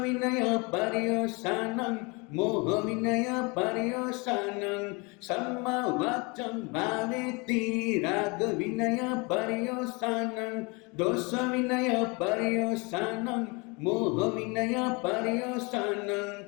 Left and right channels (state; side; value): quieter; right; 29.0 dB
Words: पर्यवसानं मोहविनय पर्यवसानं सम्मा वाचं भावेति रागविनय पर्यवसानं दोषविनय पर्यवसानं मोहविनय पर्यवसानं